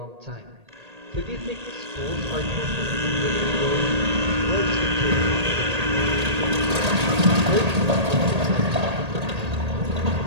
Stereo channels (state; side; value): late; left; 1.8 ms